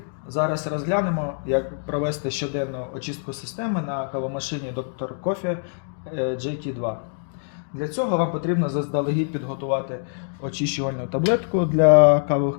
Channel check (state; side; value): silent; right; digital silence